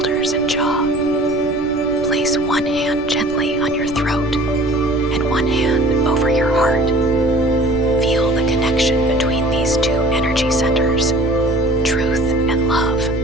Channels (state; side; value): noise; right; rumble, 15 dB below the sound